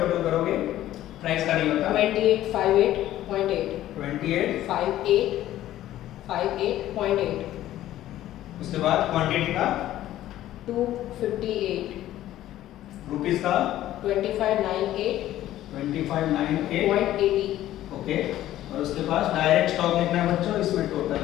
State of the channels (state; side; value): quieter; right; 13.6 dB